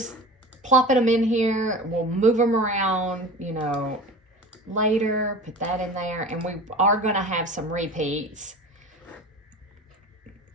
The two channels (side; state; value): both; normal; correlation 0.36